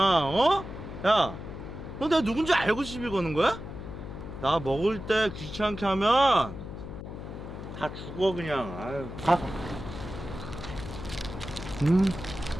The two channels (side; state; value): left; noise; hum, 10 dB below the sound